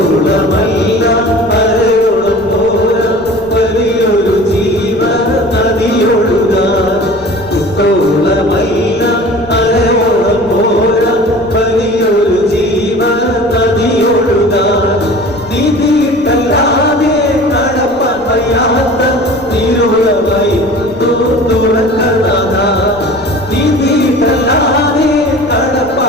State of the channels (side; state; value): left; noise; rumble, 24 dB below the sound